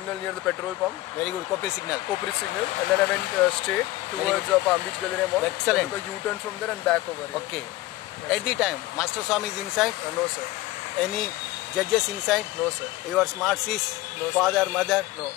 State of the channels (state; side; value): quieter; right; 17.7 dB